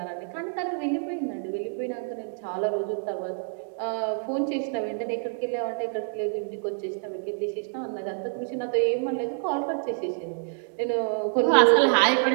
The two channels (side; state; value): left; silent; digital silence